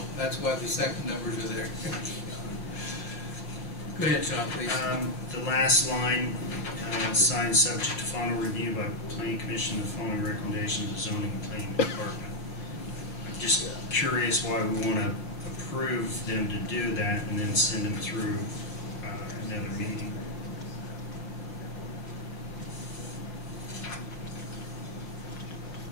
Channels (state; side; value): late; right; 5.5 ms